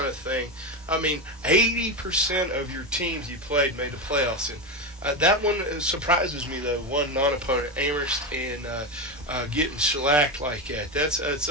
of thing. I mean, 80% of your teams you played made the playoffs, and that one surprises me, though. One non-opponent, Amherst, and getting shellacked like that.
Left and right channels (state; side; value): normal; both; correlation 0.15